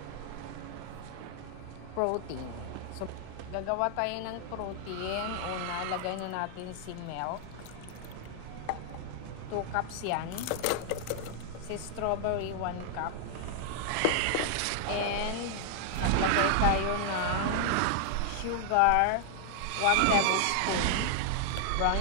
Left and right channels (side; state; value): both; different; correlation 0.00